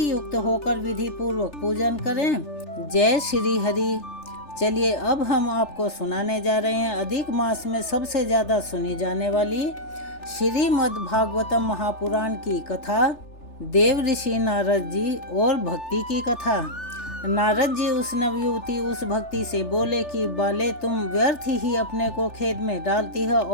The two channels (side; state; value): right; late; 3.4 ms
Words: युक्त होकर विधि पूर्वक पूजन करें। जय श्री हरि। चलिए अब हम आपको सुनाने जा रहे हैं अधिक मास में सबसे ज्यादा सुनी जाने वाली श्रीमद् भागवतम महापुराण की कथा, देव ऋषि नारद जी और भक्ति की कथा। नारद जी उस नवयुवती उस भक्ति से बोले कि बाले, तुम व्यर्थ ही अपने को खेद में डालती हो।